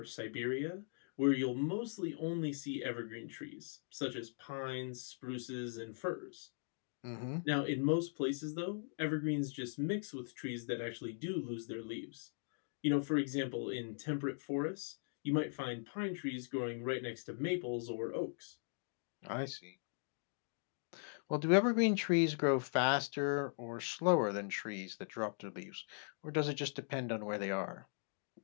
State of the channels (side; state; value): right; silent; digital silence